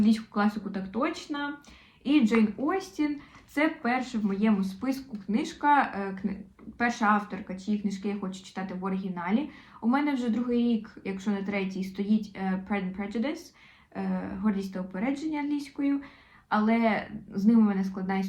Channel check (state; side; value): identical; both; correlation 1.00